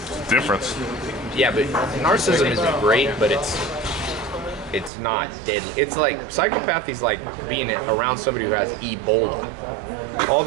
Difference. Yeah, but narcissism isn't great, but it's not deadly. It's like, psychopathy is like being around somebody who has Ebola. All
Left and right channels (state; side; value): drops out; left; at 4.9 s